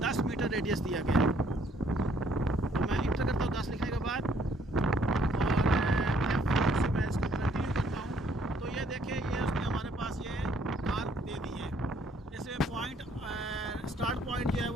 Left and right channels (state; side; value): normal; both; correlation 0.65